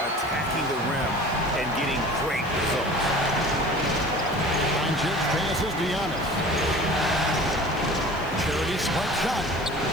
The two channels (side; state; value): left; noise; hiss, 23 dB below the sound